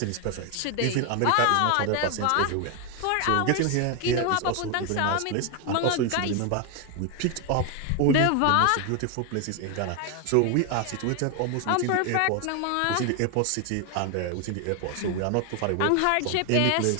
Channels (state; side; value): different; both; correlation 0.01